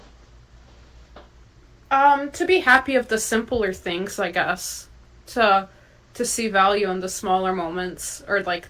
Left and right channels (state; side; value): identical; both; correlation 1.00